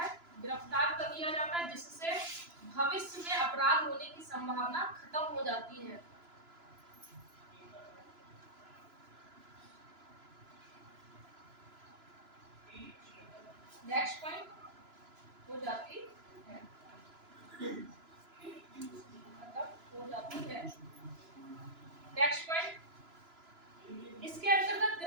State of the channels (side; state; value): left; late; 2.9 ms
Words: गिरफ्तार कर लिया जाता है, जिससे भविष्य में अपराध होने की संभावना खत्म हो जाती है। नेक्स्ट पॉइंट हो जाती है, नेक्स्ट पॉइंट, इसके अंतर्गत